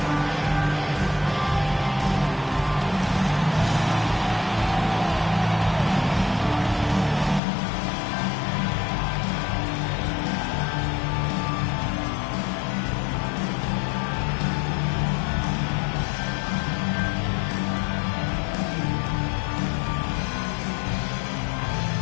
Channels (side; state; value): right; drops out; at 7.4 s